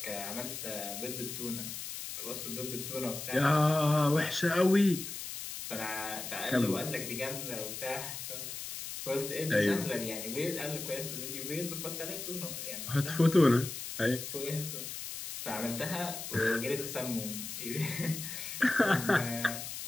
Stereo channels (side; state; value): left; noise; hiss, 7 dB below the sound